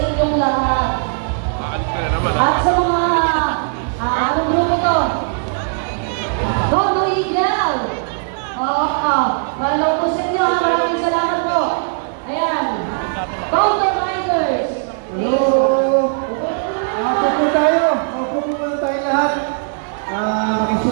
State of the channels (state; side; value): silent; left; 67 dB below the other